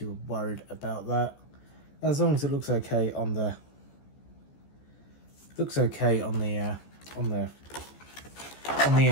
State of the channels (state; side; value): late; right; 14 ms